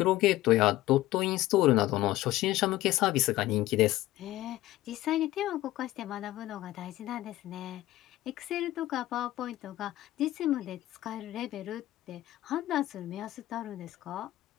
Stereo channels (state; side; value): quieter; right; 15.9 dB